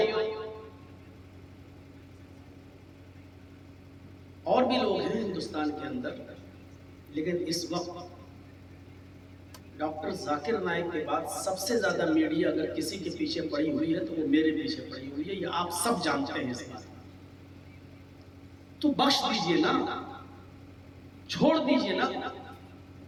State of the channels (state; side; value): identical; both; correlation 1.00